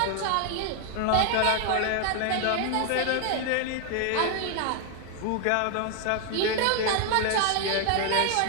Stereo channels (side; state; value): both; different; correlation 0.00